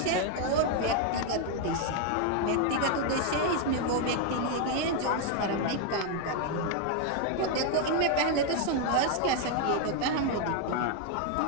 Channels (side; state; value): both; different; correlation 0.00